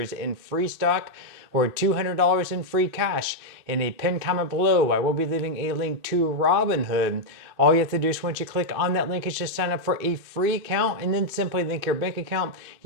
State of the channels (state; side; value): late; left; 2.6 ms